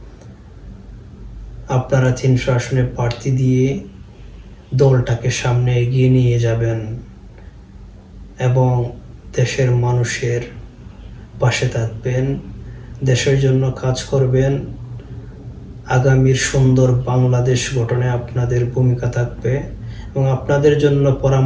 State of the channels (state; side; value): identical; both; correlation 1.00